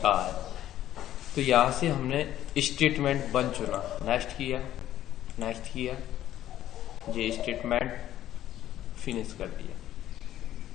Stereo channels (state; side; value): quieter; right; 12.5 dB